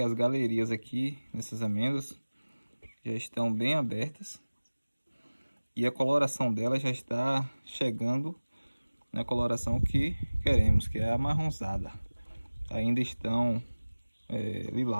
as galerias aqui nessas amêndoas já estão bem abertas. E a coloração dela já está chegando na coloração que queremos, que é a amarronzada. Ainda estão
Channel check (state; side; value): inverted; both; correlation -1.00